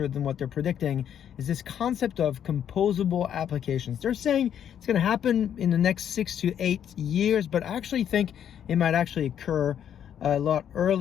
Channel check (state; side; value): quieter; right; 9.3 dB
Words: than what they're predicting is this concept of composable applications. They're saying it's going to happen in the next 6 to 8 years, but I actually think it might actually occur a lot